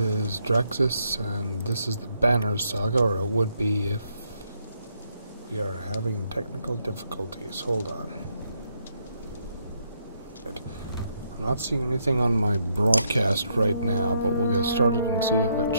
is Drexus, and this is the Banner Saga, or it would be if we are having technical difficulties. Hold on. I'm not seeing anything on my broadcast right now, but we'll get started and see if it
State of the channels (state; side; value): inverted; both; correlation -0.75